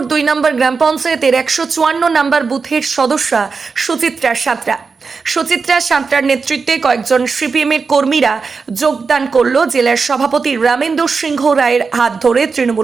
2 নম্বর গ্রাম পঞ্চায়েতের 154 নম্বর বুথের সদস্যা সুচিত্রা সাঁতরার নেতৃত্বে কয়েকজন সিপিএমের কর্মীরা যোগদান করল জেলার সভাপতি রামেন্দ্র সিংহ রায়ের হাত ধরে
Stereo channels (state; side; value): quieter; left; 4.9 dB